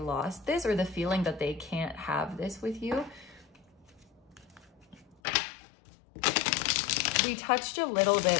this, or the feeling that they can't have this with you. We touched a little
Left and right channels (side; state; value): right; drops out; at 5.2 s